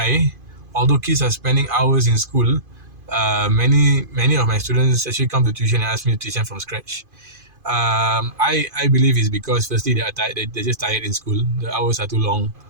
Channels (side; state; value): left; late; 2.5 ms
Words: although kids are spending hours in school, many of my students actually come to tuition and ask me to teach them from scratch. I believe it's because firstly they are tired, they're just tired in school. The hours are too long,